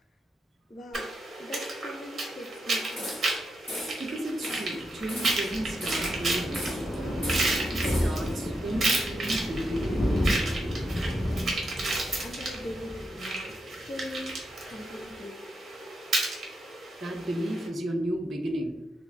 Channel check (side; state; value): both; normal; correlation 0.84